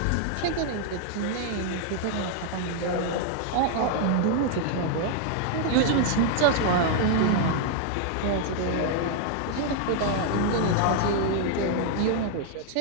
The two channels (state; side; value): different; both; correlation 0.00